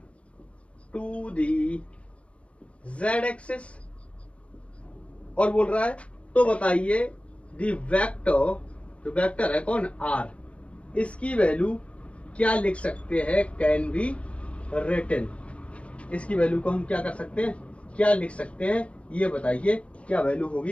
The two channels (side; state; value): right; late; 0.062 ms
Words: to the z axis. और बोल रहा है तो बताइए दी वेक्टर, जो वेक्टर है कौन, आर, इसकी वैल्यू क्या लिख सकते हैं, कैन बी रिटन। इसकी वैल्यू को हम क्या कर सकते हैं, क्या लिख सकते हैं, ये बताइए क्या वैल्यू